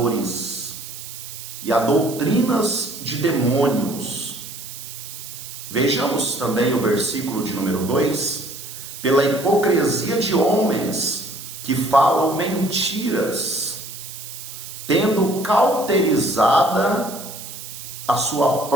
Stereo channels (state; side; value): noise; right; hiss, 12 dB below the sound